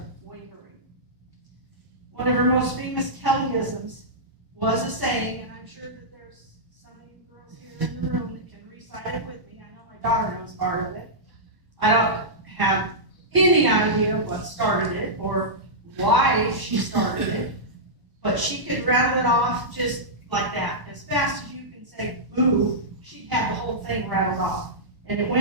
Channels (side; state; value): left; late; 1.0 ms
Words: wavering. One of her most famous Kellyisms was a saying, and I'm sure that there's some of you girls here in the room that can recite it with me. I know my daughter knows part of it. I don't have any idea what started it or why she started it, but she could rattle it off just like that. As fast as you can say boo, she'd have the whole thing rattled off. And it